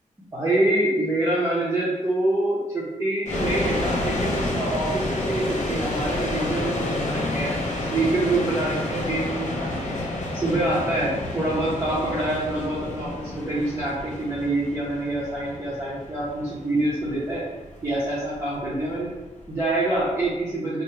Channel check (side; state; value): both; normal; correlation 0.64